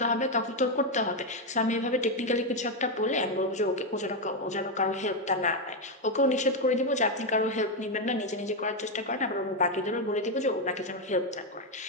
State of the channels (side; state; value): both; normal; correlation 0.05